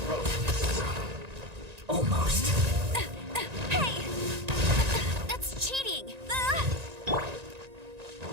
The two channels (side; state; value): left; late; 1.9 ms